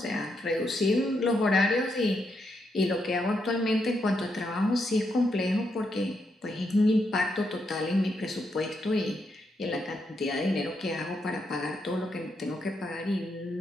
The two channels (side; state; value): both; normal; correlation 0.80